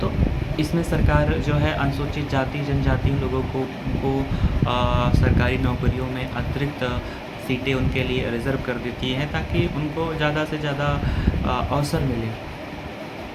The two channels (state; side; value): identical; both; correlation 1.00